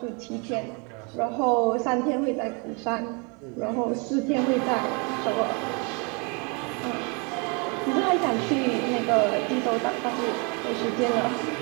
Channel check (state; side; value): quieter; left; 33.0 dB